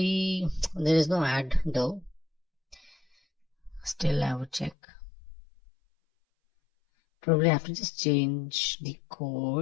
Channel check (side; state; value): right; drops out; at 4.8 s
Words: there is no ad though. Still I would check. Probably I have to just change the